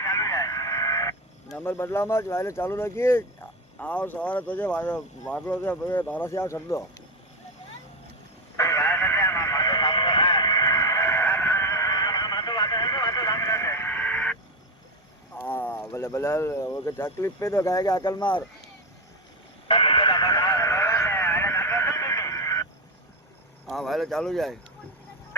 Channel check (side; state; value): both; normal; correlation 0.14